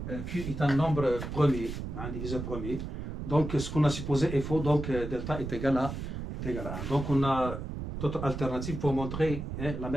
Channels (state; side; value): noise; right; rumble, 6 dB below the sound